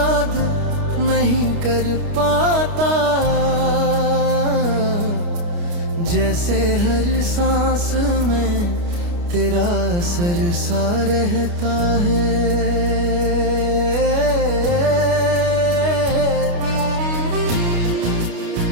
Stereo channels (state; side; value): late; left; 29 ms